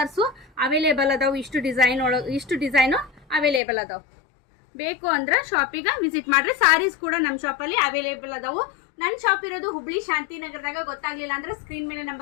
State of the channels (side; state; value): right; drops out; at 3.6 s